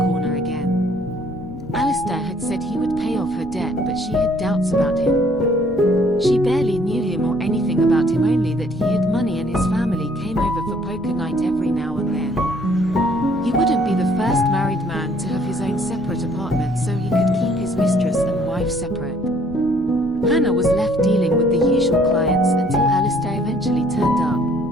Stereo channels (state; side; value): noise; left; rumble, 17 dB below the sound